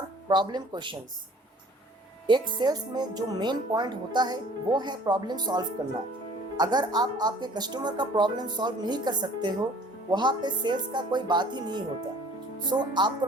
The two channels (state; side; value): normal; both; correlation 0.51